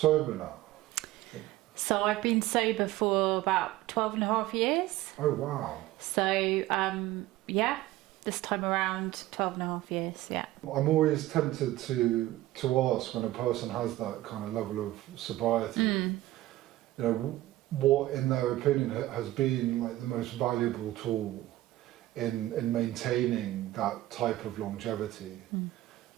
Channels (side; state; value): left; quieter; 16.1 dB